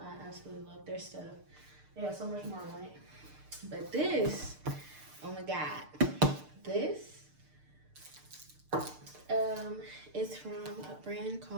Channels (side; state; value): left; late; 6.6 ms